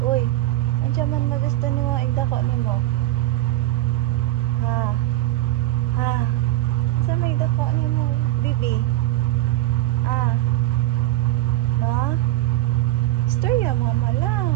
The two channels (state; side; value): quieter; left; 15.9 dB